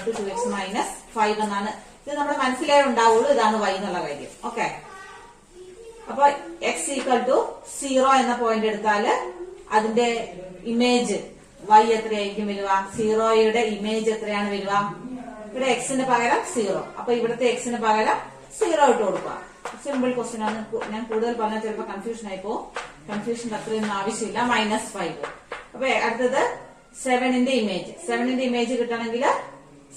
to 2x minus 5 എന്നാണ്. ഇത് നമ്മുടെ മനസ്സിലേ ഉണ്ടാവുള്ളൂ ഇതാണ് y എന്നുള്ള കാര്യം. ഓക്കെ, അപ്പൊ x ഈക്വൽ ടു 0 എന്ന പോയിന്റ് എടുത്താല് അതിന്റെ ഇമേജ് y എത്രയായിരിക്കും വരിക? 0യുടെ ഇമേജ് എത്രയാണ് വരിക? ഇവിടെ എക്സിന് പകരം 0. അപ്പൊ ഇവിടുത്തെ എക്സിന് പകരം 0 ഇട്ട് കൊടുക്കുക. സിമ്പിൾ ക്വസ്റ്റ്യൻ ആണ്. ഞാൻ കൂടുതൽ പറഞ്ഞാൽ ചിലപ്പോൾ കൺഫ്യൂഷൻ ആയിപ്പോ. കൺഫ്യൂഷൻ അത്രയൊന്നും ആവശ്യമില്ല. -5. അപ്പൊ അടുത്തത് 7ന്റെ ഇമേജ് കിട്ടണമെങ്കിൽ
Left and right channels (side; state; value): both; identical; correlation 1.00